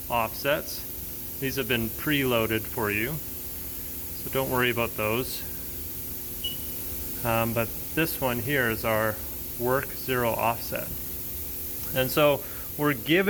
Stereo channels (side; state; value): both; identical; correlation 1.00